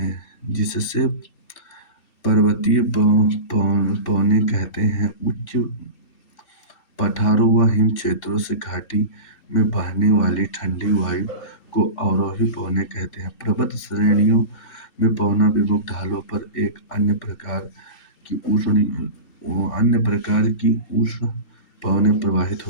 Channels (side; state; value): right; late; 2.7 ms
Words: जिससे पर्वतीय पवने कहते हैं। उच्च पठारों व हिम क्षेत्रों से घाटी में बहने वाली ठंडी वायु को अवरोही पवने कहते हैं। पर्वत श्रेणियों में पवना विमुख ढालों पर एक अन्य प्रकार की उष्ण पवनें प्रवाहित